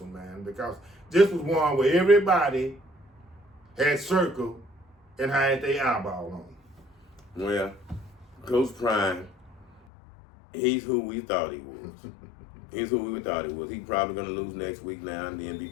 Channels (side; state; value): right; drops out; at 9.8 s